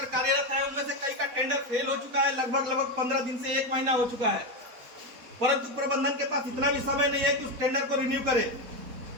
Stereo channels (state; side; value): late; left; 4.0 ms